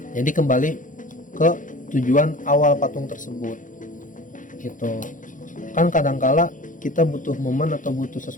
Jadi kembali ke tujuan awal patung tersebut, gitu. Kan kadangkala kita butuh momen atau butuh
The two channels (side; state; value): right; late; 0.38 ms